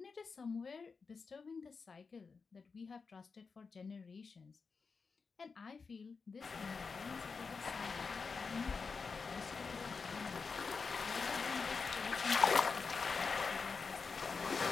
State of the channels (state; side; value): quieter; right; 4.9 dB